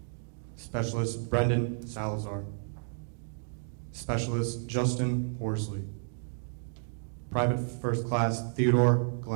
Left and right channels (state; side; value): silent; left; digital silence